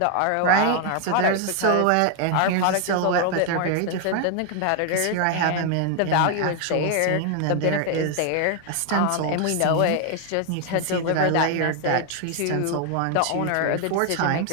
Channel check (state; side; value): different; both; correlation 0.00